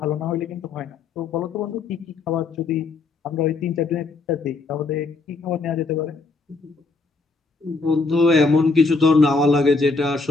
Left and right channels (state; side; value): quieter; right; 3.9 dB